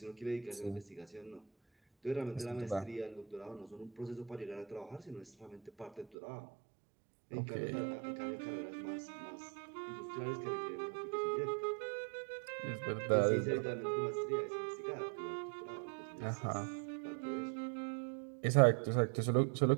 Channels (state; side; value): drops out; left; at 6.1 s